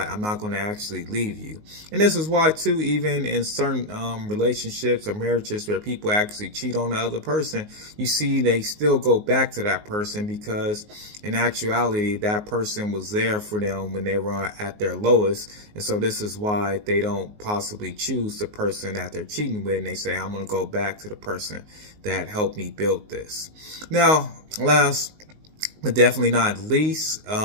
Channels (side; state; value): left; late; 19 ms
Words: I'm not going to actually leave you. And this is why too, even in certain relationships or marriages where people actually cheat on the other person, you see they still go back to that person because in actuality that person was there for them when they were at their lowest. And so this is why they don't possibly choose the person that they're cheating with, and they say, I'm going to go back to the person that helped me build this. Now, last but definitely not least,